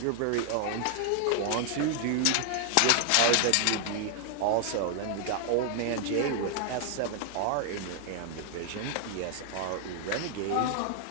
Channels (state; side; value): different; both; correlation 0.00